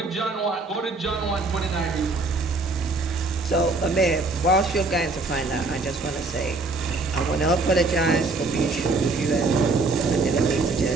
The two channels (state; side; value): quieter; left; 3.5 dB